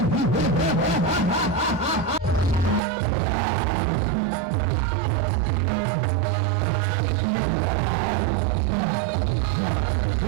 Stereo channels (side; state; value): left; drops out; at 2.8 s